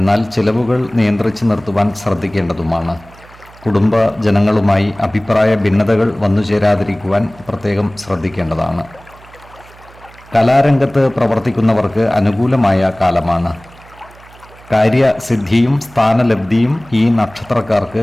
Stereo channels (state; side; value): noise; right; hum, 23 dB below the sound